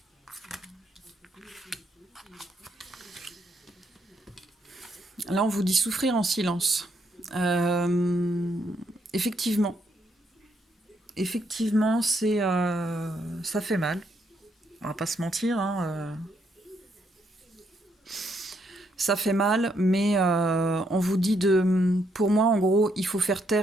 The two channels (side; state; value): both; normal; correlation 0.75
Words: Là, on vous dit souffrir en silence. Effectivement. Effectivement, ça fait mal. On va pas se mentir, hein, ça fait mal, mais on vous dit pour moi, en gros, il faut faire